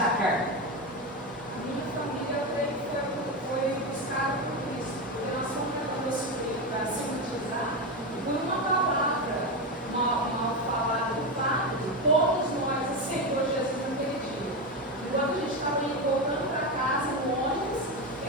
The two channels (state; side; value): normal; both; correlation 0.14